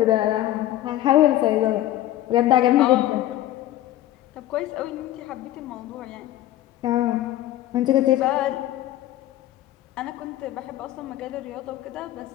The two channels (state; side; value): quieter; right; 14.0 dB